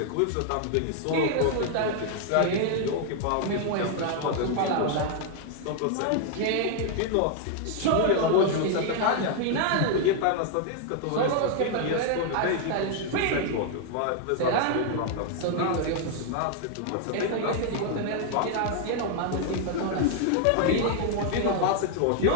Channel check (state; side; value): different; both; correlation 0.00